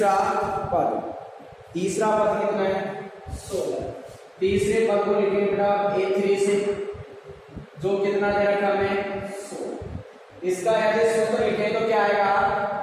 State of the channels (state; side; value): identical; both; correlation 1.00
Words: पद कितना है 16। तीसरे पद को लिखेंगे बेटा A3 से, जो कितना दे रखा हमें 16। इसका यदि सूत्र लिखें तो क्या आएगा,